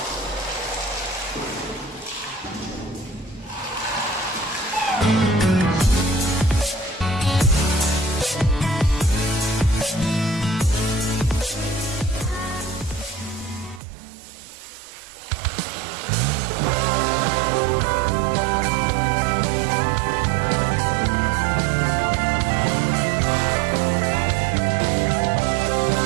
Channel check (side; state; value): left; drops out; at 13.8 s